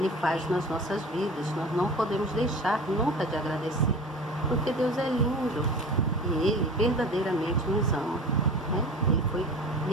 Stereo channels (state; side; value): normal; both; correlation 0.38